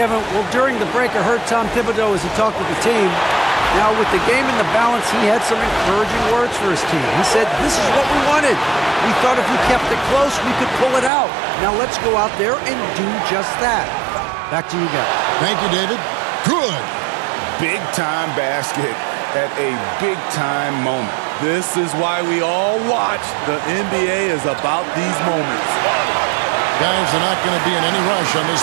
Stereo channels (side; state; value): left; drops out; at 11.1 s